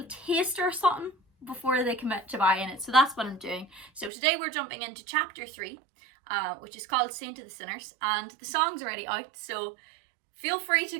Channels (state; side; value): drops out; left; at 4.1 s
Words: taster or something before they commit to buying it. So that's what I'm doing. So today we're jumping into chapter 3, which is called Saint to the Sinners, and the song's already out. So feel free to